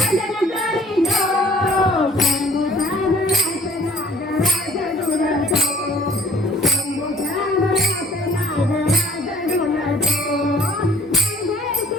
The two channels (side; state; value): both; normal; correlation 0.56